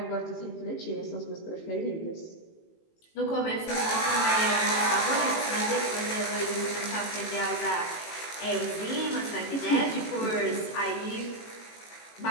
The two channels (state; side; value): late; right; 18 ms